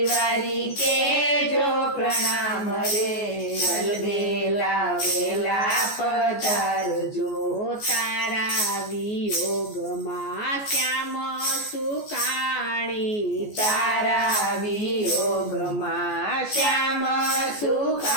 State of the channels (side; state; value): right; late; 14 ms